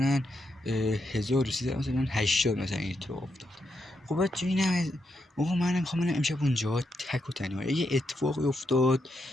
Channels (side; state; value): both; normal; correlation 0.82